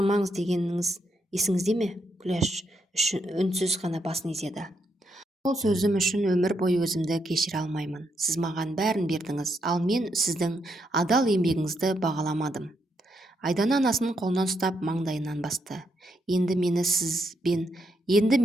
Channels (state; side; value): normal; both; correlation 0.79